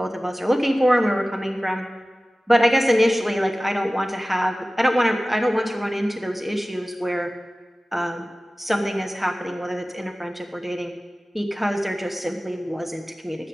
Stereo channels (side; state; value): both; normal; correlation 0.97